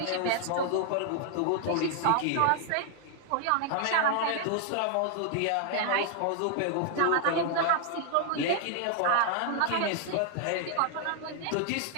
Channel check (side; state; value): both; different; correlation 0.00